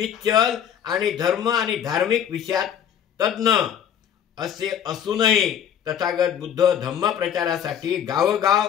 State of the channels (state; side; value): quieter; right; 9.0 dB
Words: आणि धर्म आणि धार्मिक विषयात तज्ञ असे असूनही तथागत बुद्ध धम्म प्रचारासाठी गावोगाव